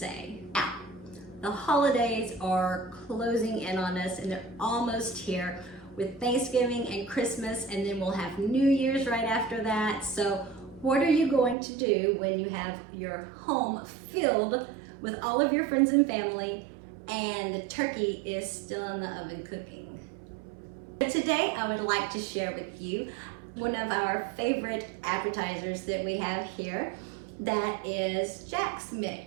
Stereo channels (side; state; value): left; drops out; at 11.6 s